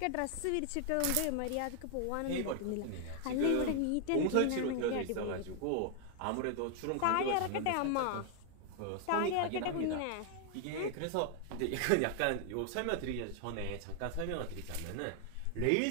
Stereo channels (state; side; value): different; both; correlation 0.00